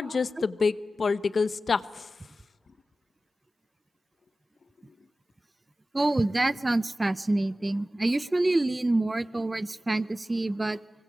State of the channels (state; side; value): normal; both; correlation 0.95